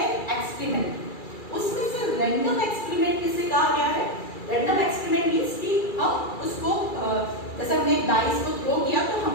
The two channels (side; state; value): right; late; 2.3 ms